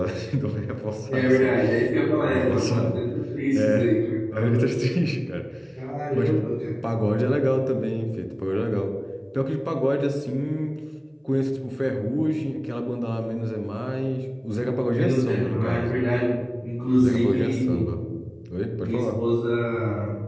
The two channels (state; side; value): identical; both; correlation 1.00